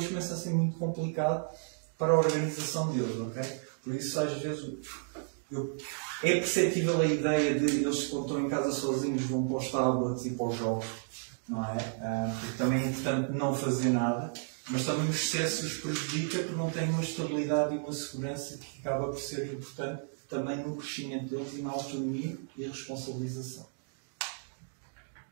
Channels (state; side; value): silent; left; digital silence